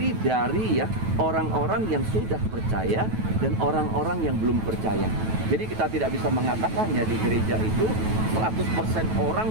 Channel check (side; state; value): left; late; 9.2 ms